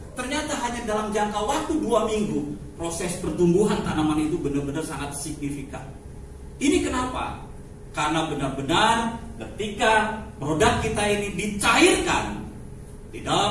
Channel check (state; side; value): identical; both; correlation 1.00